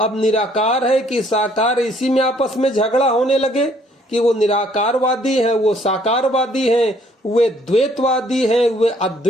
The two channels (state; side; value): normal; both; correlation 0.63